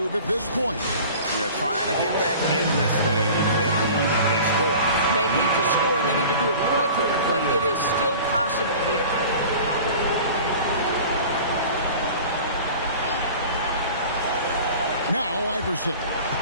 at this point? Yeah, trying to get back in this thing. They need a score. They need to score, and they need to do it quickly, but it is still possible here. Now Iverson.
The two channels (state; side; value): inverted; both; correlation -0.41